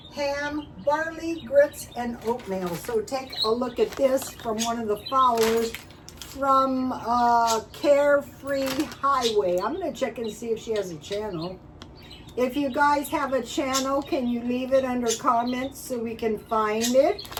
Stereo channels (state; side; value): identical; both; correlation 1.00